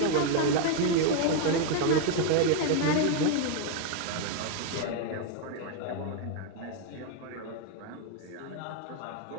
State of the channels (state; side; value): different; both; correlation 0.01